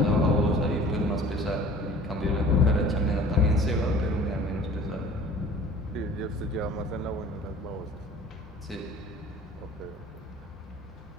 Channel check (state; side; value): normal; both; correlation 0.46